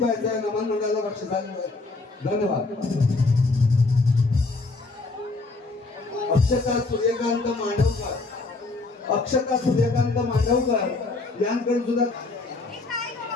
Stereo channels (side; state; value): right; quieter; 3.5 dB